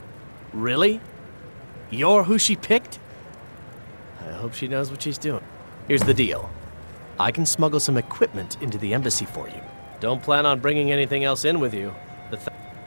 Really? You're who she picked? I hope she knows what she's doing. Here's the deal. I can smuggle some equipment into the embassy for you. Don't plan on bringing anything else in with you.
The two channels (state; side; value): inverted; both; correlation -1.00